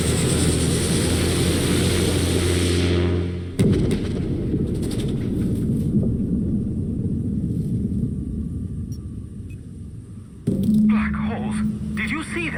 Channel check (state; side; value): identical; both; correlation 1.00